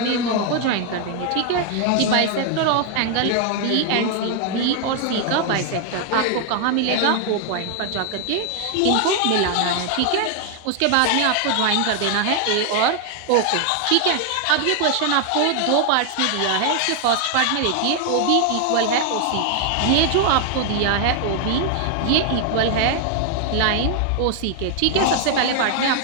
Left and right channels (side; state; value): both; different; correlation 0.00